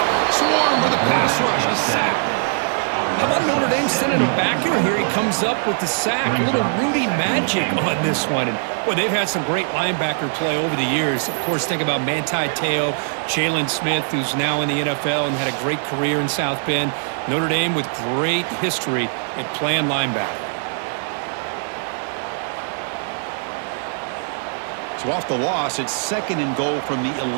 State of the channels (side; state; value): left; silent; digital silence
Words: Swarm with a pass rush. A sack. How about Notre Dame sending a backer here? He comes up with the sack. A little Rudy magic on this one. And boy, they've had some great linebacker play over the years. Of course, think about Manti Te'o, Jalen Smith, who's now in the NFL and had a great career in South Bend. Notre Dame with great history at playing linebacker. So off the loss, it's 2nd and goal from the